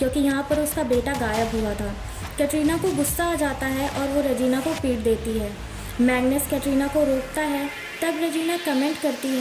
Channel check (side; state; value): both; identical; correlation 1.00